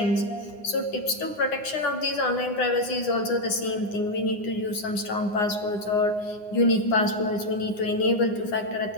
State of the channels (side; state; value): right; late; 9.7 ms